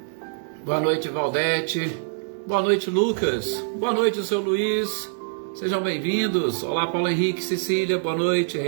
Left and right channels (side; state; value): left; silent; digital silence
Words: Boa noite, Valdete, boa noite, Lucas, boa noite, seu Luiz, sejam bem-vindos. Olá, Paulo Henrique, Cecília, boa noite,